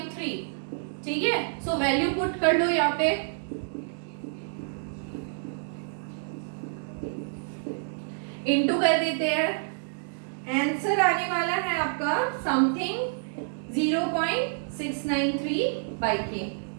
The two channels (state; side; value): silent; left; 59 dB below the other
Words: ठीक है। सो वैल्यू पुट कर लो यहाँ पे, इनटू कर देते हैं, आंसर आने वाला है आपका समथिंग 0.693 by K